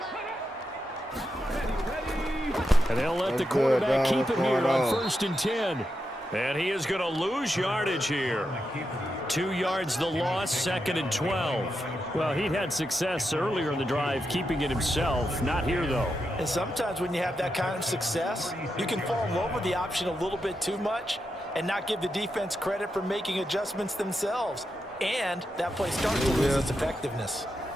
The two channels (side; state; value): both; normal; correlation 0.86